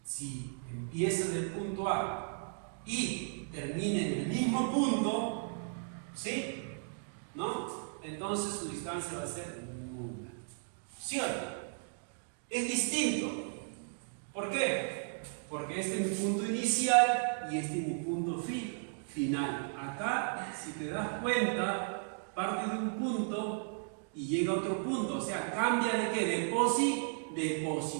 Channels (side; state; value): left; silent; digital silence